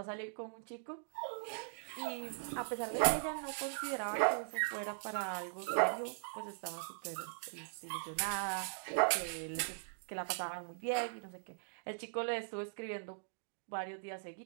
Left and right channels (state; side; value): silent; left; digital silence